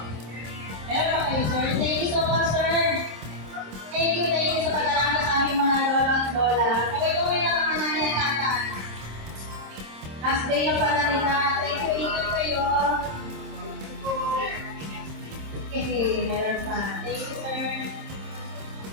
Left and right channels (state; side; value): late; left; 26 ms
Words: Meron pa kayo, sir? Thank you so much, sir. Thank you sa pag-alala sa aming mga lola at lola. Kaway-kaway na mga nanay at tatay. Last day na pala nila. Thank you, ingat kayo. Okay, meron pa. Thank you, sir.